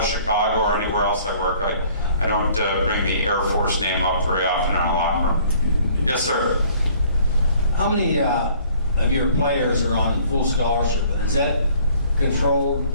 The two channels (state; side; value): inverted; both; correlation -0.57